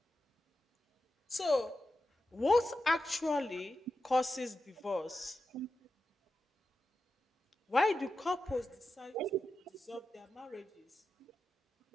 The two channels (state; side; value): normal; both; correlation 0.90